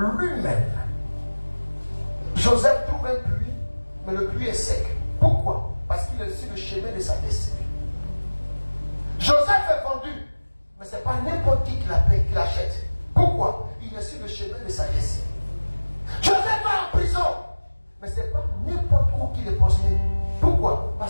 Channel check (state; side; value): inverted; both; correlation -1.00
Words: Joseph trouve un puits, mais le puits est sec. Pourquoi? Parce qu'il est sur le chemin de sa destinée. Joseph est vendu, mais ce n'est pas n'importe qui l'achète. Pourquoi? Il est sur le chemin de sa destinée. Joseph va en prison, mais ce n'est pas n'importe où qu'il est posté. Pourquoi?